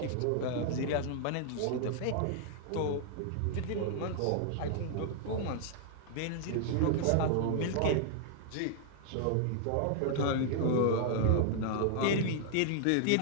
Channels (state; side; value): different; both; correlation -0.01